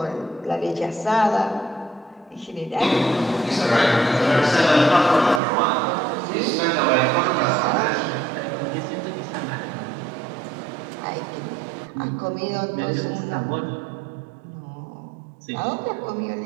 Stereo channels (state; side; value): drops out; left; at 5.4 s